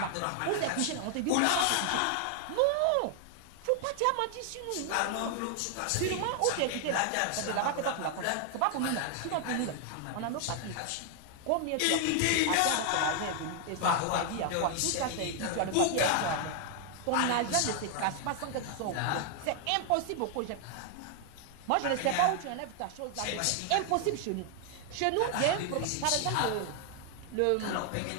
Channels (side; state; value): both; different; correlation 0.00